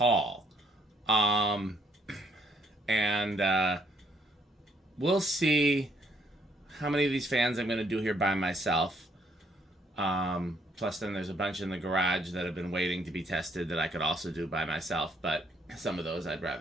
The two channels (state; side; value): normal; both; correlation 0.68